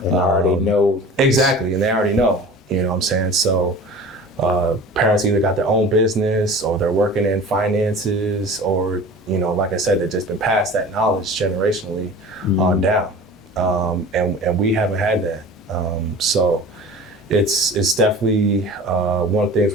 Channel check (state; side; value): normal; both; correlation 0.39